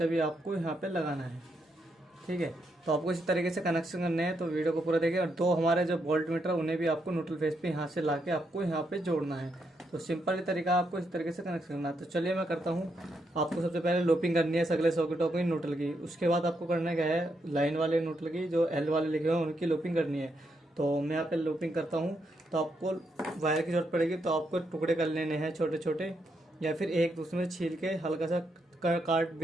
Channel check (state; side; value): normal; both; correlation 0.80